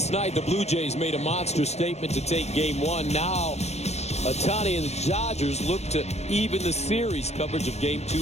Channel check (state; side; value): late; right; 0.31 ms